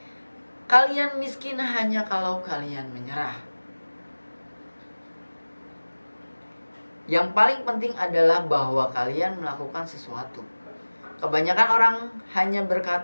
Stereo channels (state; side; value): inverted; both; correlation -1.00